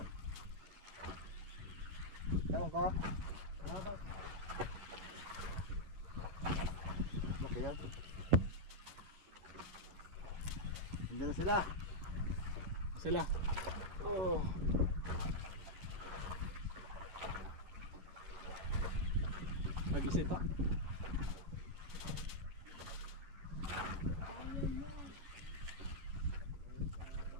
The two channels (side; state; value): left; late; 10 ms